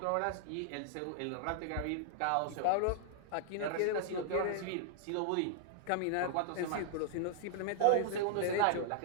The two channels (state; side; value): different; both; correlation 0.00